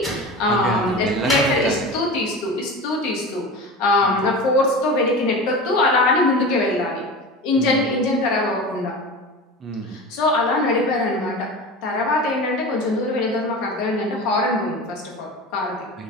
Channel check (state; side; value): normal; both; correlation 0.30